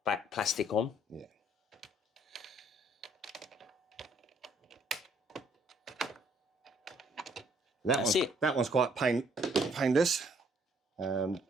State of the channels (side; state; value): both; normal; correlation 0.64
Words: plastic on. Yeah. That one's quite painless.